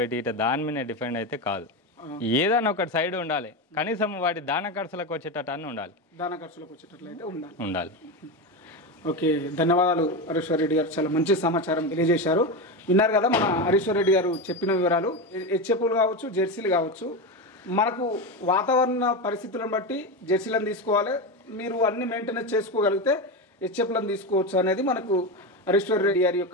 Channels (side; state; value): both; normal; correlation 0.16